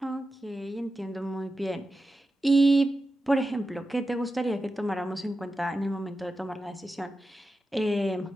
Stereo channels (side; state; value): both; normal; correlation 0.92